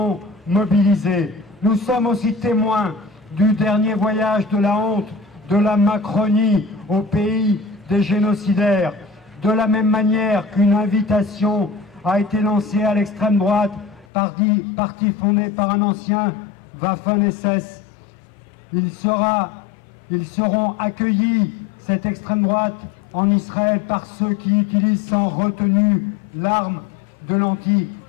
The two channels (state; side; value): drops out; right; at 14.1 s